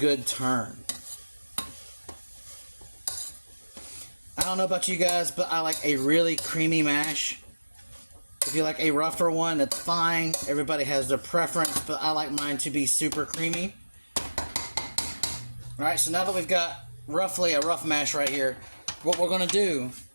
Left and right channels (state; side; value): inverted; both; correlation -1.00